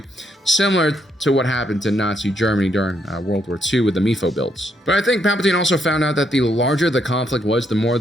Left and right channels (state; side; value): normal; both; correlation 0.75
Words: similar to what happened to Nazi Germany during World War II with the MIFO builds. But I think Palpatine also found out that the larger the conflict was, the more